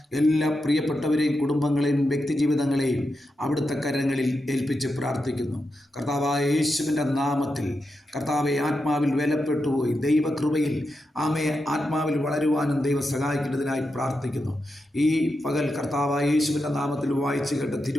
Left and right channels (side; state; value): both; normal; correlation 0.87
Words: എല്ലാ പ്രിയപ്പെട്ടവരെയും കുടുംബങ്ങളെയും വ്യക്തിജീവിതങ്ങളെയും അവിടുത്തെ കരങ്ങളിൽ ഏൽപ്പിച്ച് പ്രാർത്ഥിക്കുന്നു. കർത്താവായ യേശുവിൻ്റെ നാമത്തിൽ കർത്താവെ, ആത്മാവിൽ ബലപ്പെട്ടുപോയി ദൈവകൃപയിൽ ആത്മാവിൽ വളരുവാനും ദൈവം സഹായിക്കേണ്ടതിനായി പ്രാർത്ഥിക്കുന്നു. ഈ പകൽ കർത്താവായ യേശുവിൻ്റെ നാമത്തിൽ വായിച്ചു കേട്ട